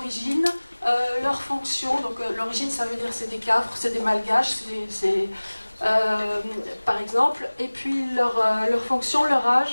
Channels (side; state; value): both; inverted; correlation -1.00